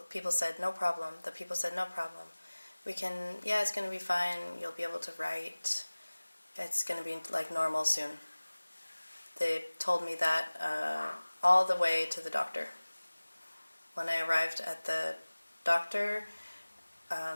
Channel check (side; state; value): both; inverted; correlation -1.00